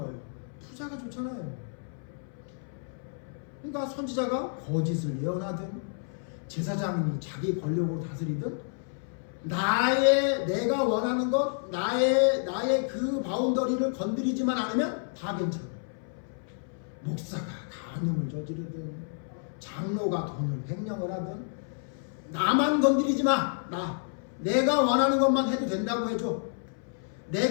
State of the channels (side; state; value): right; silent; 58 dB below the other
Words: 부자가 좋잖아요. 그러니까 선지자가 거짓을 예언하든 제사장이 자기 권력으로 다스리든 내가 원하는 것, 나의 그 바운더리를 건드리지만 않으면 다 괜찮아. 목사가 간음을 저지르든 장로가 돈을 횡령을 하든 나만 건드리지 마. 내가 원하는 것만 해도 된다고 해줘.